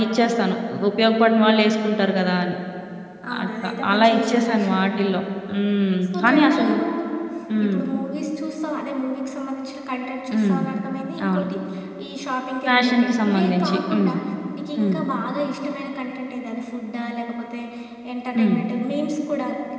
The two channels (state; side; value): identical; both; correlation 1.00